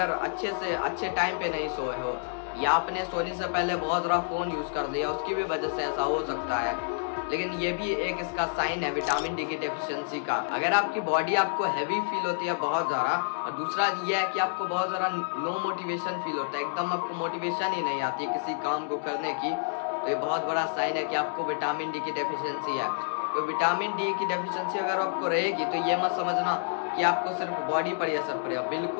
अच्छे से अच्छे टाइम पे नहीं सोए हो, या आपने सोने से पहले बहुत ज़्यादा फ़ोन यूज़ कर लिया, उसकी भी वजह से ऐसा हो सकता है। लेकिन ये भी एक इसका साइन है विटामिन डी की डेफिशिएंसी का। अगर आपकी बॉडी आपको हैवी फील होती है बहुत ज़्यादा, और दूसरा ये है कि आपको बहुत ज़्यादा लो मोटिवेशन फील होता है, एकदम आपको मोटिवेशन ही नहीं आती किसी काम को करने की, तो ये बहुत बड़ा साइन है कि आपको विटामिन डी की डेफिशिएंसी है। तो विटामिन डी की डेफिशिएंसी अगर आपको रहेगी तो ये मत समझना कि आपको सिर्फ बॉडी पर ही असर पड़ेगा,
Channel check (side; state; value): right; silent; digital silence